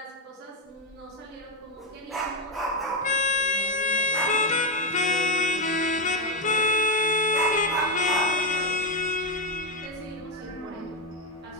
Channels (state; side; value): normal; both; correlation 0.06